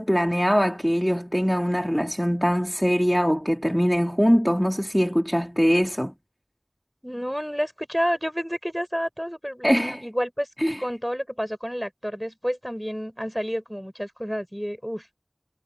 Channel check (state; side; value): identical; both; correlation 1.00